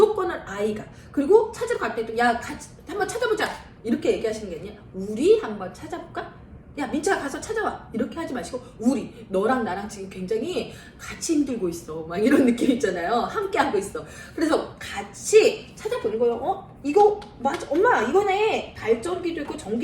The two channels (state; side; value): identical; both; correlation 1.00